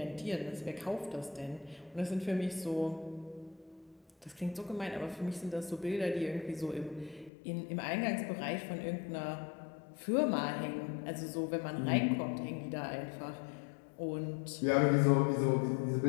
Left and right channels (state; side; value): drops out; right; at 7.3 s